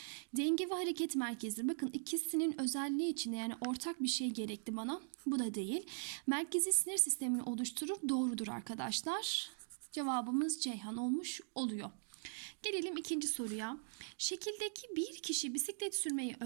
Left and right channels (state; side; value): silent; left; digital silence